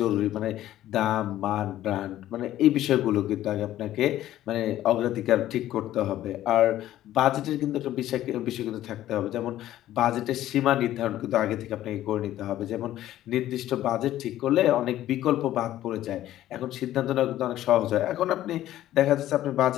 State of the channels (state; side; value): quieter; right; 13.4 dB